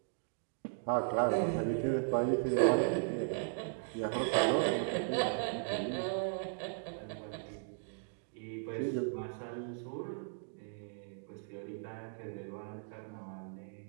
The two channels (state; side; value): silent; left; digital silence